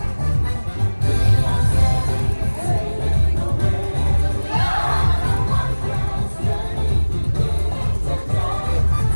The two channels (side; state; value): both; inverted; correlation -1.00